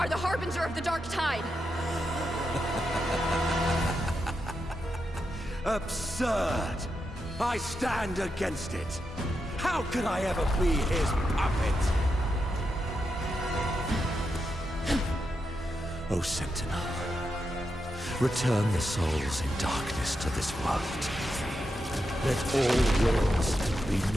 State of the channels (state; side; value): normal; both; correlation 0.86